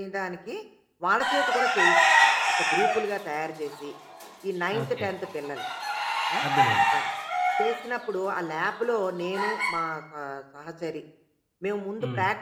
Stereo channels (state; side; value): identical; both; correlation 1.00